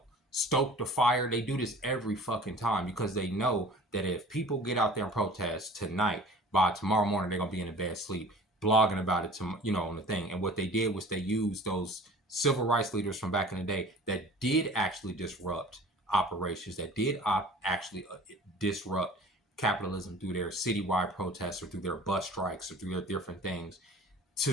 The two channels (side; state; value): both; normal; correlation 0.44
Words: stoke the fire. They do this every fucking time because they know that if people get out there and protest tonight, by tomorrow morning they're gonna be in a bad sleep, blogging about it on the thing. And what they did was they used those civil rights leaders from back in the day that did actually disrupt operations, that did actually disrupt capitalism through their citywide protests or through their bus strikes or through their different things,